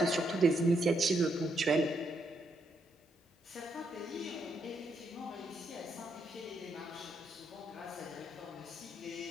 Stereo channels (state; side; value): normal; both; correlation 0.77